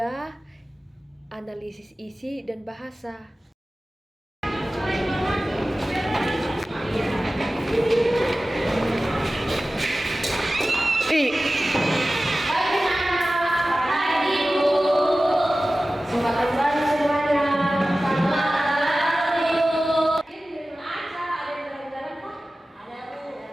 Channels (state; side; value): normal; both; correlation 0.96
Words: analisis isi dan bahasa.